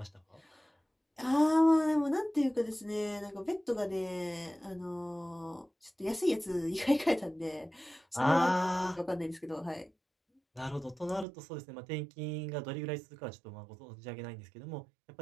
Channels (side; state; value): left; drops out; at 11.2 s